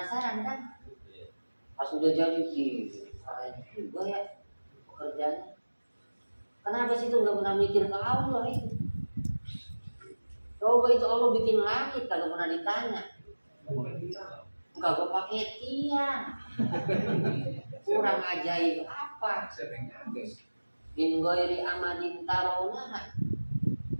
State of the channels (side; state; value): both; inverted; correlation -1.00